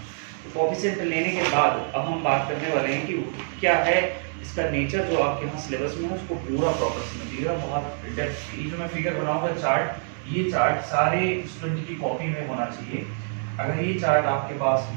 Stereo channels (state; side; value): silent; left; 61 dB below the other